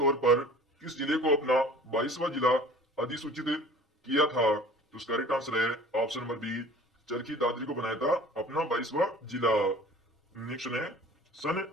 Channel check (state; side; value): normal; both; correlation 0.45